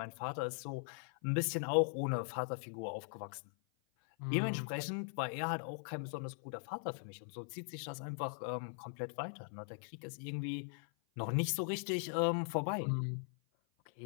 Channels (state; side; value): silent; right; 51 dB below the other